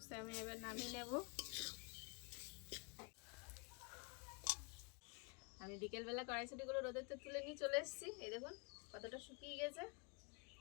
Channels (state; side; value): quieter; right; 33.7 dB